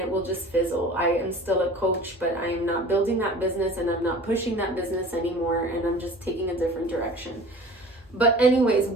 will just fizzle. I am still a coach, but I am not building that business, and I'm not pushing that business anymore, and I'm just taking a different direction. But anyways,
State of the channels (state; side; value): normal; both; correlation 0.42